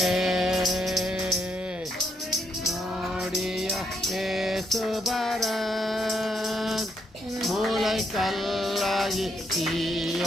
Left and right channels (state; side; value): normal; both; correlation 0.76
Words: நோடிய ஏசுபரன் மூளை கல்லாகி